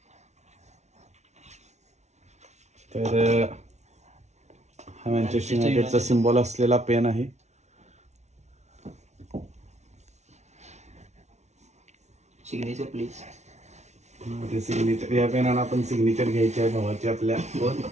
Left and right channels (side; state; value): left; late; 0.32 ms